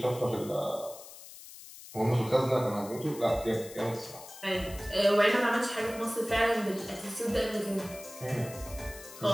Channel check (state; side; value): noise; left; hiss, 16 dB below the sound